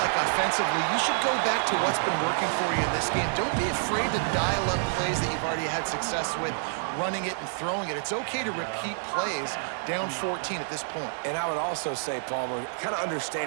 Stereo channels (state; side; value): silent; left; 59 dB below the other